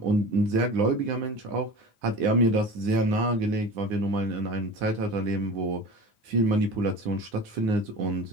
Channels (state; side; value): late; left; 9.8 ms